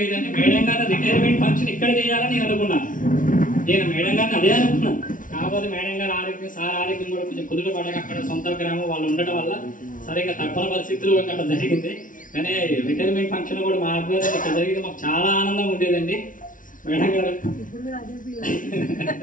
అయితే మేడం గారి రిటైర్మెంట్ ఫంక్షన్ ఇక్కడ చేయాలని నేను అనుకున్నాను. నేను మేడం గారిని అదే అనుకున్నాను. కాకపోతే మేడం గారి ఆరోగ్యం, సార్ ఆరోగ్యం కూడా కొంచెం కుదుట పడక అక్కడ సొంత గ్రామం వాళ్ళు ఉండటం వల్ల సరిగ్గా తప్పని పరిస్థితులు అక్కడ జరిగింది. కానీ రిటైర్మెంట్ ఫంక్షన్ కూడా మా ఆధ్వర్యంలో ఇక్కడ జరిగింది. మాకు చాలా ఆనందంగా ఉండేదండి. మేడం గారు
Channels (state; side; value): late; right; 0.38 ms